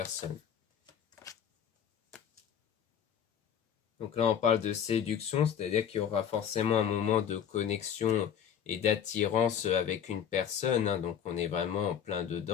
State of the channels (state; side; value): quieter; right; 8.6 dB